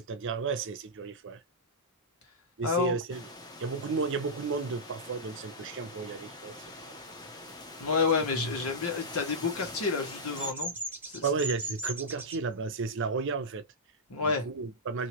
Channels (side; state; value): both; normal; correlation -0.10